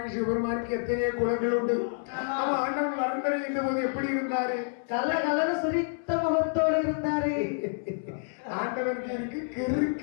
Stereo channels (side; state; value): right; silent; 59 dB below the other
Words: சிவபெருமானுக்கு எத்தனையோ குலங்கள் உண்டு. அவன் ஆண்டவன் வரம் தர இந்த போது எப்படி இருந்தாரு? கல கலர சிரித்த முகத்தோடு இருந்தாரு. ஆண்டவனுக்கு இருக்கு